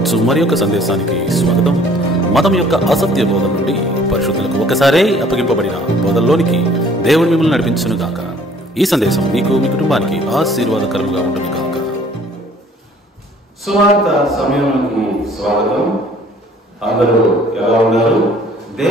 మరి యొక్క సందేశానికి స్వాగతం. మతం యొక్క అసత్య బోధన నుండి పరిశుద్ధులకు ఒకసారే అప్పగింపబడిన బోధనలోనికి దేవుడు మిమ్మల్ని నడిపించును గాక. ఈ సందేశం మీకు మీ కుటుంబానికి ఆశీర్వాదకరంగా ఉంటుంది గాక. సువార్త సమయానికి స్వాగతం. అందరూ ఎలా ఉన్నారు?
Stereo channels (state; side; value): normal; both; correlation 0.56